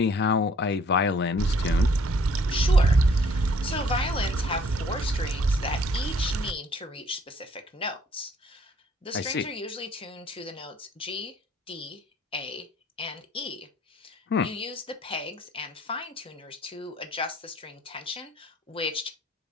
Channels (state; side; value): normal; both; correlation 0.60